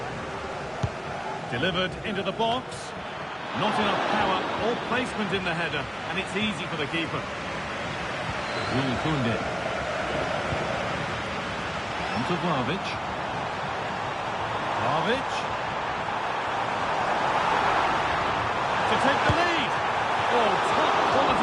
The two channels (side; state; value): both; identical; correlation 1.00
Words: Delivered into the box. Not enough power or placement in the header, and it's easy for the keeper. Will Koundé. On to Vlahovic. Vlahovic. To take the lead. Oh, top